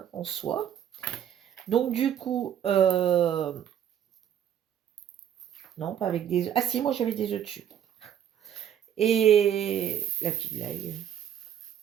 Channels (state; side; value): quieter; left; 9.7 dB